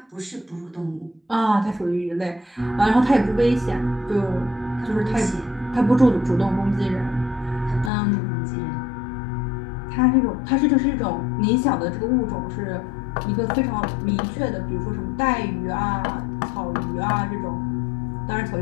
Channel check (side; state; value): right; drops out; at 7.9 s